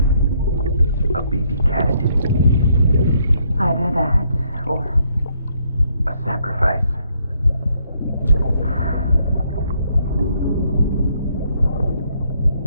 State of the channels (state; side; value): inverted; both; correlation -0.71